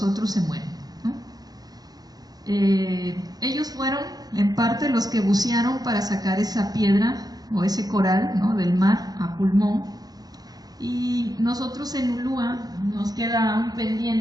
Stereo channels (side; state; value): left; late; 0.19 ms